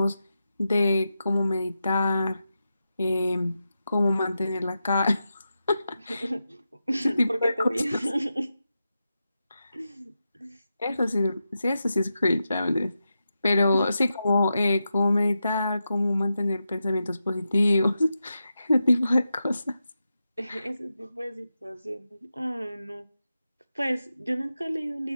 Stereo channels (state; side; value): inverted; both; correlation -0.89